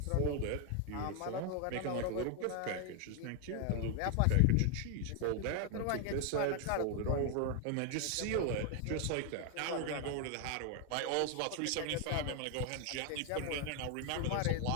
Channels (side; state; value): both; different; correlation 0.00